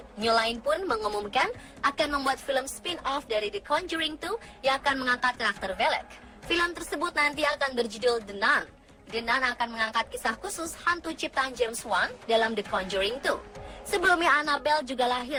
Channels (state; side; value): identical; both; correlation 1.00